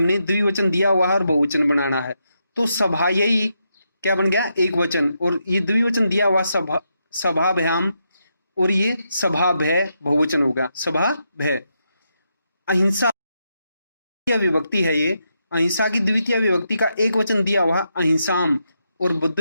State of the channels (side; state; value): both; inverted; correlation -0.82